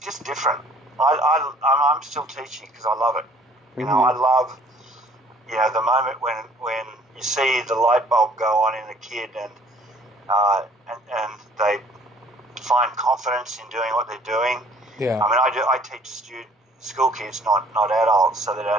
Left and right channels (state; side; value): normal; both; correlation 0.57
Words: different. I'm still teaching because I love it. You know, I love, the moment when you see the light bulb go on in a kid and they find confidence in doing what they're doing. Yeah. I mean, I teach school kids, not adults, so that a